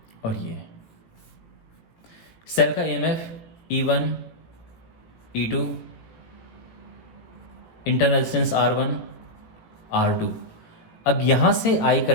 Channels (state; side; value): late; right; 18 ms